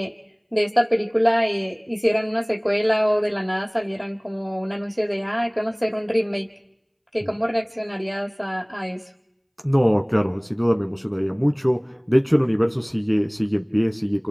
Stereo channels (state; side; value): identical; both; correlation 1.00